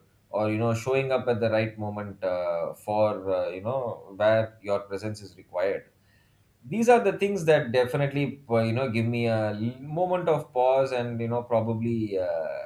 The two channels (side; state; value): both; identical; correlation 1.00